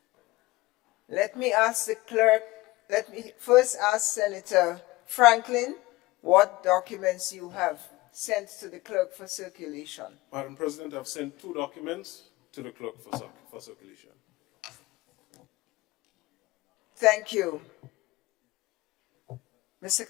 Let me ask the clerk, let me first ask Senator Franklin what documents you have sent to the clerk for circulation. Madam President, I've sent 2 documents to the clerk for circulation. Thank you. Mr.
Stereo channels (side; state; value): right; quieter; 20.2 dB